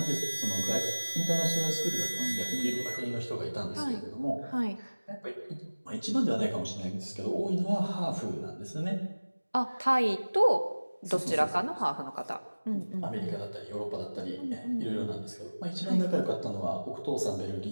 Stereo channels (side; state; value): both; inverted; correlation -1.00